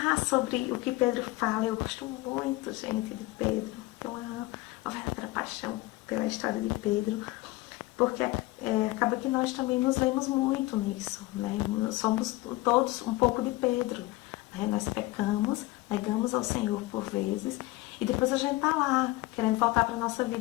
sobre o que Pedro fala. Eu gosto muito, gente, de Pedro. Então, uma verdadeira paixão pela história de Pedro. Porque acaba que nós também nos vemos muito nisso, né? Nós somos todos um pouco de Pedro, né? Nós pecamos, negamos ao Senhor por vezes. E depois a gente tá lá, querendo voltar para a nossa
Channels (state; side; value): quieter; right; 19.6 dB